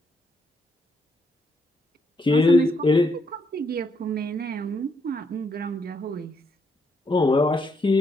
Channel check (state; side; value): normal; both; correlation 0.76